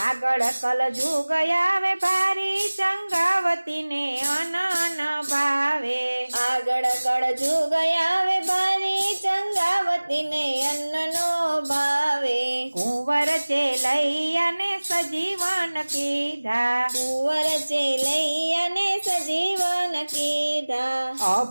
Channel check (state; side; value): inverted; both; correlation -1.00